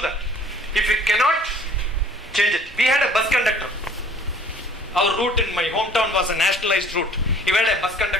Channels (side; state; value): both; normal; correlation 0.53